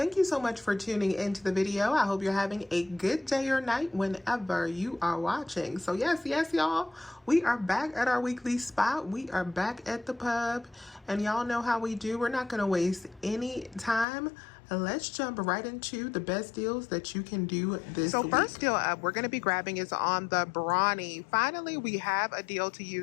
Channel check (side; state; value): right; drops out; at 14.1 s